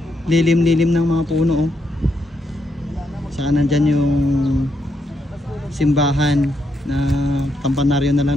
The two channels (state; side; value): normal; both; correlation 0.80